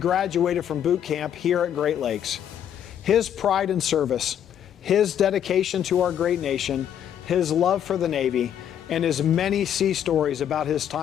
graduated from boot camp here at Great Lakes. His pride in service, his dedication to our great nation, his love for the Navy, and his many sea stories about his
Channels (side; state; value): right; quieter; 9.6 dB